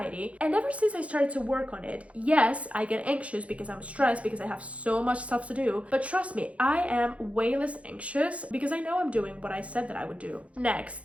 And ever since I started to work on it, yes, I get anxious because I'm stressed because I have so much stuff to do. But trust me, I am way less anxious because I know I'm doing what I said that I would do.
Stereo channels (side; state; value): left; late; 0.064 ms